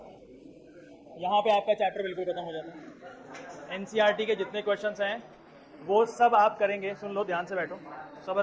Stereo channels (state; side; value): identical; both; correlation 1.00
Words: यहाँ पे आपका चैप्टर बिल्कुल खत्म हो जाता है। एनसीईआरटी के जितने क्वेश्चंस हैं वो सब आप करेंगे। सुन लो, ध्यान से बैठो,